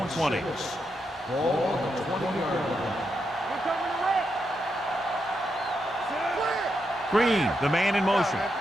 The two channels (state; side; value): normal; both; correlation 0.83